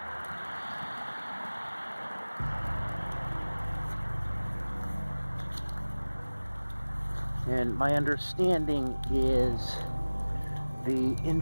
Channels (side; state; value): both; inverted; correlation -1.00